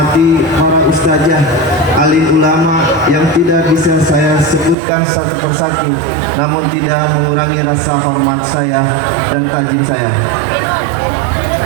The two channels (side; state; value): left; drops out; at 4.8 s